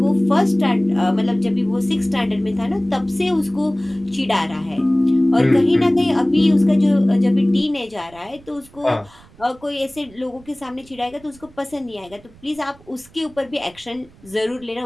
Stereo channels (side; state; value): right; noise; rumble, 25 dB below the sound